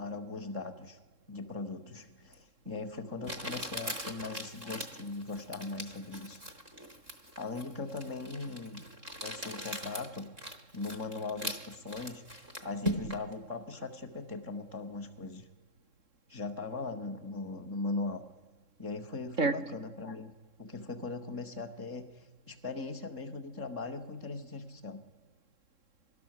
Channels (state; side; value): late; left; 3.7 ms